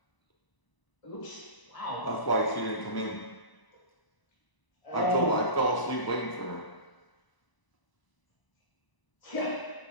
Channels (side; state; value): right; late; 1.0 ms